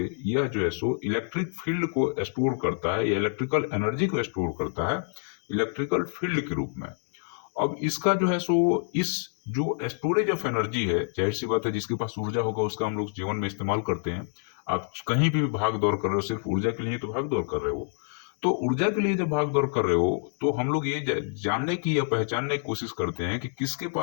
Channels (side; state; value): right; silent; digital silence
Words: यह जो है सो इलेक्ट्रिक फील्ड को स्टोर करता है या इलेक्ट्रिकल एनर्जी को स्टोर करता है इलेक्ट्रिकल फील्ड के रूप में। अब इसका जो है सो इस जो स्टोरेज ऑफ एनर्जी है, जाहिर सी बात है जिसके पास ऊर्जा होगा उसका हम लोग जीवन में इस्तेमाल करते हैं। आप कहीं भी भाग दौड़ कर रहे हो सिर्फ ऊर्जा के लिए तो भाग दौड़ कर रहे हो। तो ऊर्जा के लिए जब भाग दौड़ कर रहे हो तो हम लोग ये जानने की या पहचानने की कोशिश करते हैं कि किसके